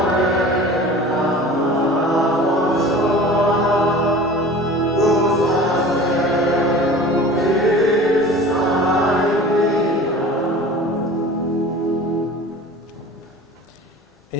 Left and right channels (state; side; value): normal; both; correlation 0.40